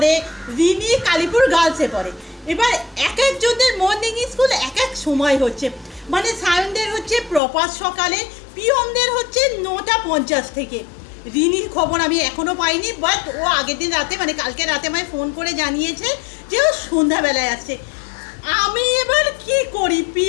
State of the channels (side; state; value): right; drops out; at 7.4 s